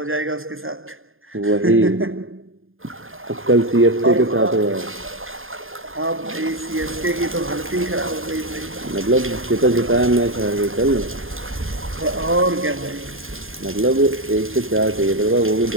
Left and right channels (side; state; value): left; late; 0.59 ms